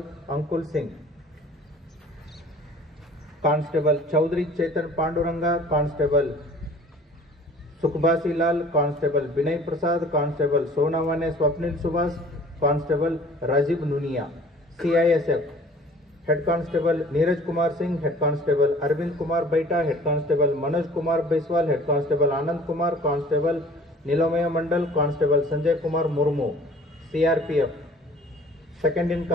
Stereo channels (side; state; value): both; normal; correlation 0.48